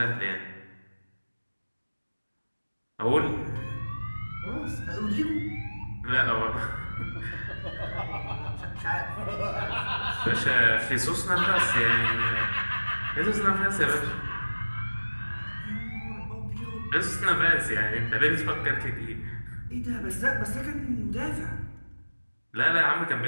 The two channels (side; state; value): both; inverted; correlation -1.00